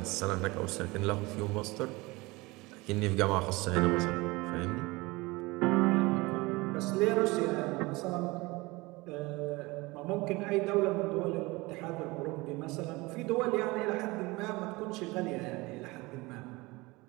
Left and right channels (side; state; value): left; quieter; 22.9 dB